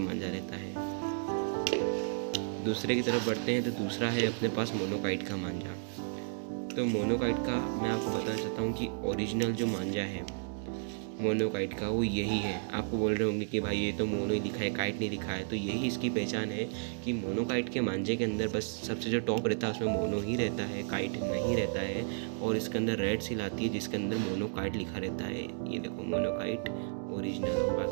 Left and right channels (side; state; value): left; silent; digital silence